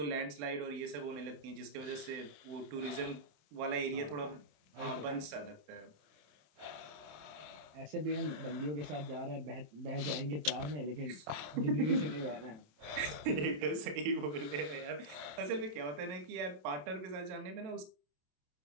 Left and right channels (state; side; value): late; left; 27 ms